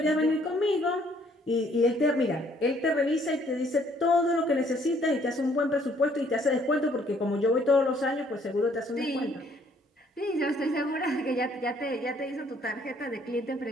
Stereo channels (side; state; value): both; normal; correlation 0.63